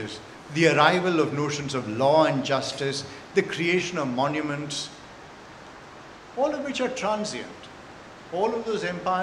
The arrival of notions of law and justice, the creation of monuments, all of which are transient. All of those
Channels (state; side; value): identical; both; correlation 1.00